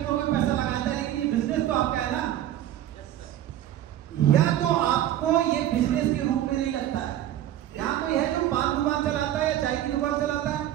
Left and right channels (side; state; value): left; quieter; 12.4 dB